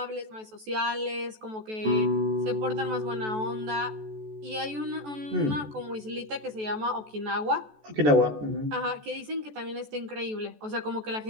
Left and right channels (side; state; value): left; late; 14 ms